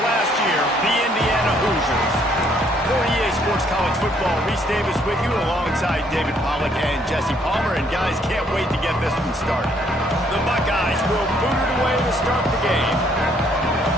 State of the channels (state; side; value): normal; both; correlation 0.67